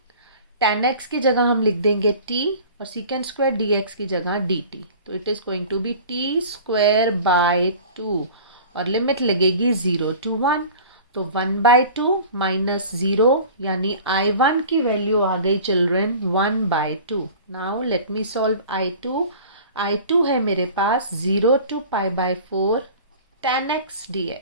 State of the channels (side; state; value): both; inverted; correlation -0.42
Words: tan x की जगह हम लिख देंगे t और secant स्क्वायर dx की जगह dt। तो it is going to be t square by 2 और लिमिट लगेगी 0 to 1। तो 1/2 माइनस 0 यानी I1 की वैल्यू आ गई children 1/2। Now let me solve I2। I2 है मेरे पास 0 to π/4 tan x